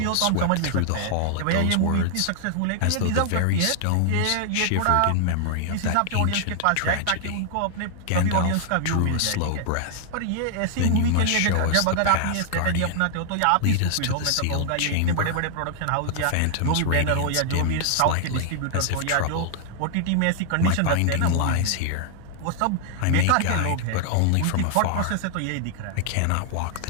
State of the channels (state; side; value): different; both; correlation 0.00